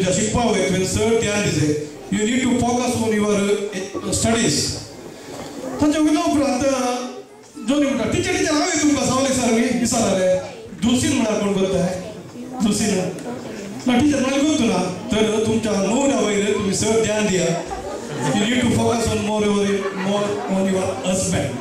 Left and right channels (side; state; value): both; identical; correlation 1.00